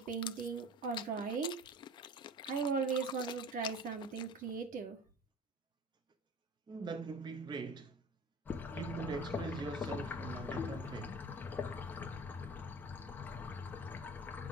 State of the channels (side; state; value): both; normal; correlation 0.40